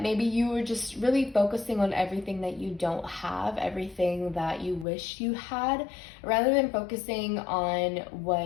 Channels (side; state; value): right; drops out; at 4.9 s